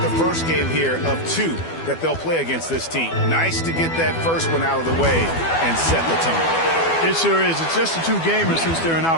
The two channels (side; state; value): right; late; 12 ms